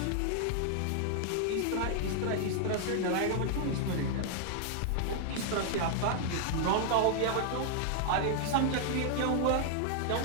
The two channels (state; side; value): different; both; correlation -0.01